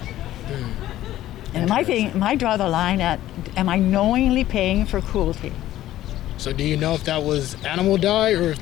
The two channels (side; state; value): right; quieter; 13.9 dB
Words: And my draw the line at, am I knowingly paying for cruelty? So do you know if that was animal dye or if